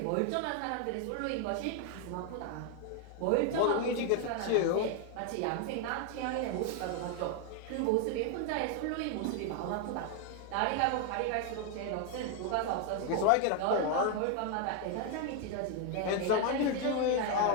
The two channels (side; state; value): both; different; correlation 0.01